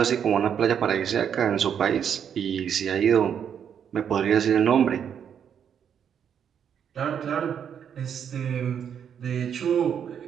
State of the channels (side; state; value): left; quieter; 8.3 dB